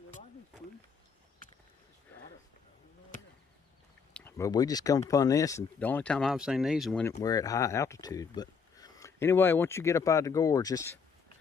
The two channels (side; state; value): right; quieter; 5.8 dB